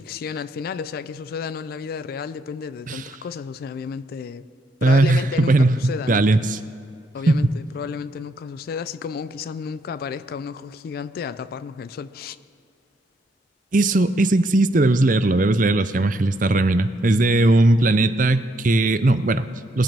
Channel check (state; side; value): normal; both; correlation 0.74